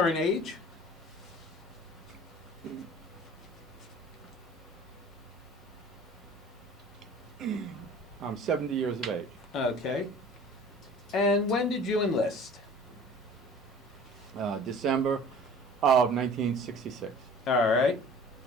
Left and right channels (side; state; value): both; normal; correlation 0.46